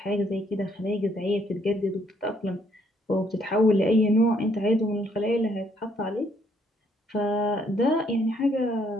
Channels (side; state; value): both; normal; correlation 0.69